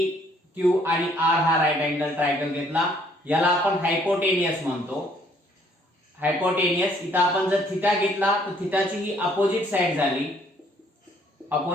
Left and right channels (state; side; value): normal; both; correlation 0.63